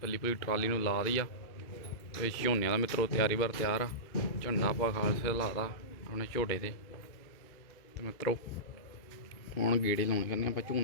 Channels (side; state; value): right; late; 2.2 ms